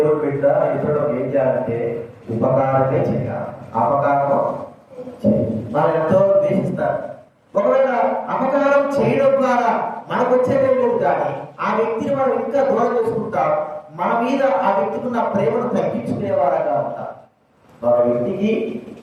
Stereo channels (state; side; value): identical; both; correlation 1.00